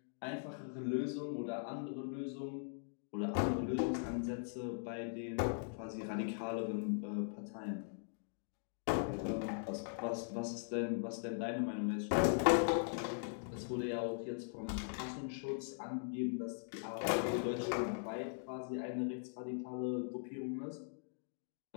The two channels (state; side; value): silent; right; digital silence